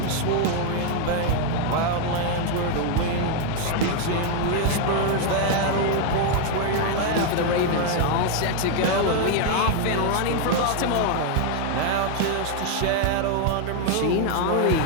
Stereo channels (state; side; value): different; both; correlation 0.01